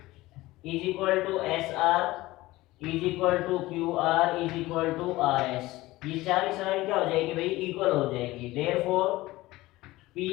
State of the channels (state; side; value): quieter; right; 18.6 dB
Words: is equal to SR is equal to QR is equal to RS, ये सारी क्या हो जाएगी भाई, इक्वल हो जाएगी। Therefore